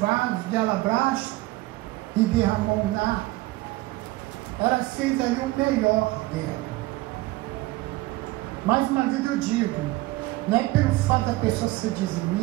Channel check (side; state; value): left; quieter; 19.5 dB